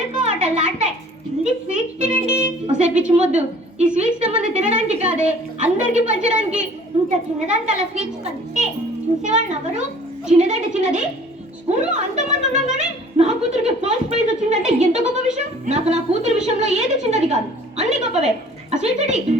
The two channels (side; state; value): both; normal; correlation 0.51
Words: కోటలు ఆడతాయి. ఇది స్వీట్స్ తినండి. ఒసే పిచ్చి మొద్దు, ఈ స్వీట్స్ సంబంధం తినడానికి కాదే, అందరికి పంచడానికి. ఇంత చిన్నదానికి అలా స్వీట్స్ పంచితే చూసేవాళ్ళు ఎవరు? చిన్నదంటే చిన్నది, స్కూల్లో అంతమంది ఉండగానే నా కూతురికి ఫస్ట్ ప్రైజ్ వచ్చిందంటే ఎంత గొప్ప విషయం. నాకు నా కూతురు విషయంలో ఏది చిన్నది కాదు, అన్ని గొప్పవే. ఆ స్వీట్స్